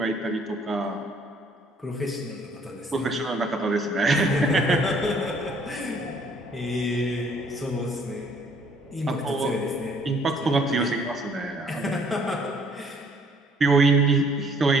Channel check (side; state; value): both; normal; correlation 0.61